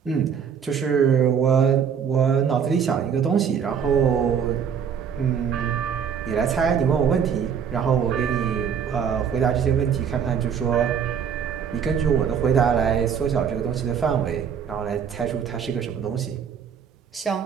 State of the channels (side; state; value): left; quieter; 7.5 dB